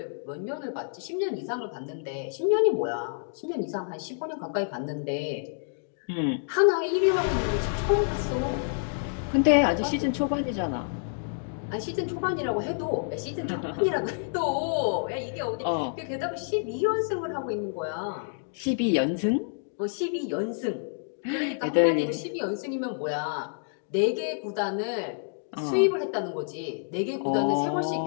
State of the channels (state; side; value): silent; right; digital silence